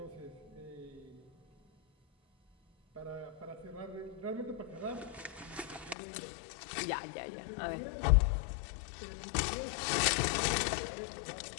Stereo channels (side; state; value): right; drops out; at 6.0 s